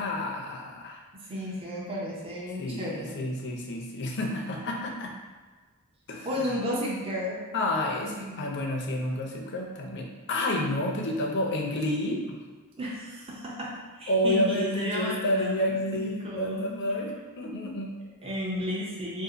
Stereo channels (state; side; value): normal; both; correlation 0.01